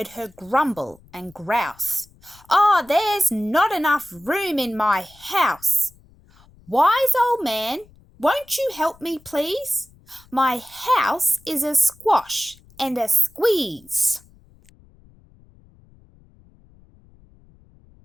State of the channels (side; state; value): left; noise; rumble, 28 dB below the sound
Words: her grumble and grouse. "Oh, there's not enough room in my house. Wise old man, won't you help me, please? My house is a squash and a squeeze."